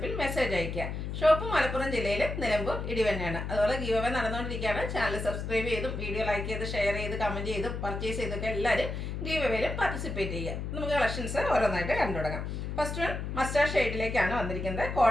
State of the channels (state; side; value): noise; left; hum, 5 dB below the sound